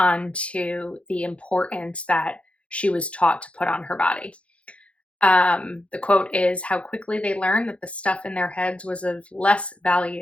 the importance that she was taught to put on her body. The quote is, "How quickly they learned that the stuff in their heads was of less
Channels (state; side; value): late; right; 0.061 ms